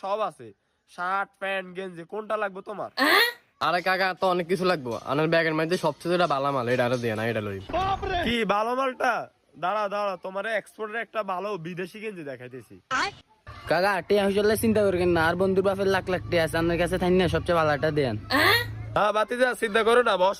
সব আছে, শার্ট প্যান্ট গেঞ্জি, কোনটা লাগবে তোমার? আরে কাকা তো অনেক কিছু লাগবো, আমার ব্যাগের মধ্যে সবচেয়ে ভালো মাল এটা আরো দিয়ে না, এটা লই। কি ভালো মালটা? দাঁড়া তোমার এক্সপোর্টের একটা ভালো বিদেশি গেঞ্জি দেখাইতেছি। কাকা টিয়া হইলে চিন্তা করবেন না, আর বন্ধুর বাপের লাখ লাখ টিয়া আছে, আপনার কাছে থাই না সবচেয়ে ভালোটা দেন। হ্যাঁ বাতিজা চিন্তা করো না,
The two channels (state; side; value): identical; both; correlation 1.00